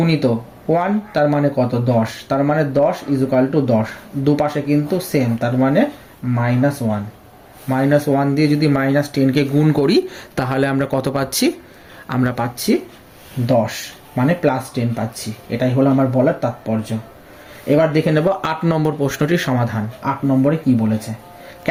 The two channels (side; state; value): both; identical; correlation 1.00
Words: 1 তার মানে কত 10, তার মানে 10 ইজুকাল টু 10, দুপাশে কিন্তু সেম, তার মানে -1, -1 দিয়ে যদি -10কে গুণ করি তাহলে আমরা কত পাচ্ছি, আমরা পাচ্ছি 10, মানে +10 পাচ্ছি। এটাই হলো আমার বলার তাৎপর্য। এবার দেখে নেব 8 নম্বর প্রশ্নটির সমাধান। 8 নম্বরে কি বলেছে,